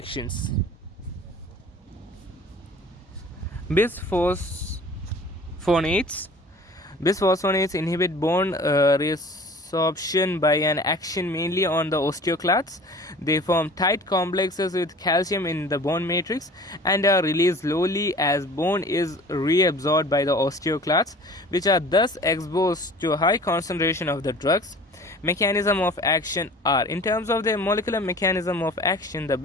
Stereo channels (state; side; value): normal; both; correlation 0.45